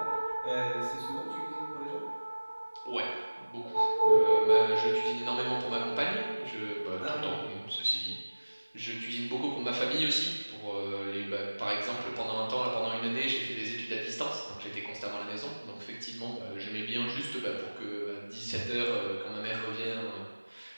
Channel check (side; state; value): both; inverted; correlation -1.00